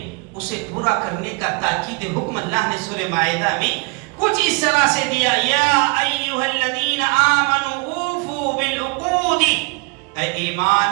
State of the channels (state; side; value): quieter; left; 30.8 dB